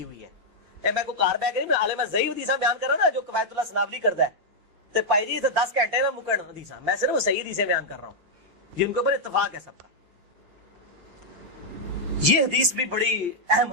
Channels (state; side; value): late; left; 5.6 ms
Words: ہوئی ہے. میں کو کار بیگ نہیں, عالم ضعیف حدیثاں بیان کر رہا نا جو قوایت اللہ سنابلی کرتا ہے تے پائی جی تے 10 گھنٹے نہ مکن حدیثاں, میں صرف صحیح حدیثیں بیان کر رہا ہوں جن کے اوپر اتفاق ہے سب کا. یہ حدیث بھی بڑی اہم